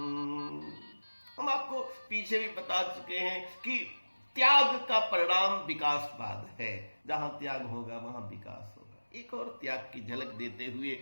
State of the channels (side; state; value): both; inverted; correlation -1.00